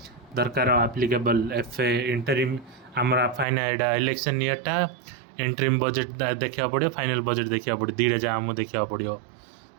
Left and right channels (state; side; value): drops out; left; at 3.5 s